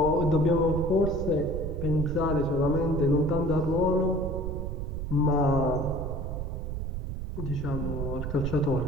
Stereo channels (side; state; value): right; noise; rumble, 4 dB below the sound